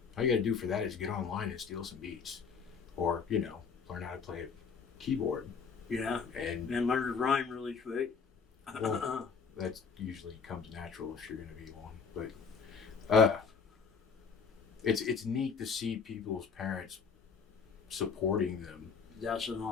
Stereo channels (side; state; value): right; quieter; 5.7 dB